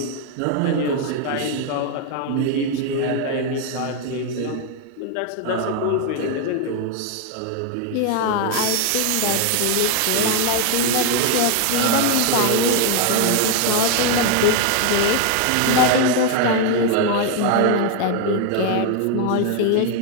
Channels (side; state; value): both; different; correlation 0.01